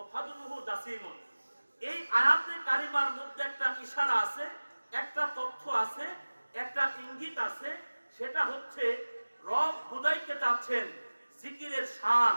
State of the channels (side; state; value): both; inverted; correlation -1.00